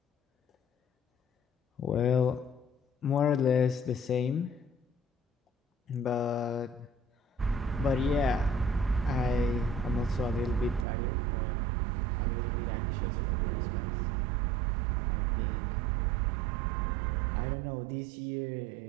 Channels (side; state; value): left; drops out; at 10.9 s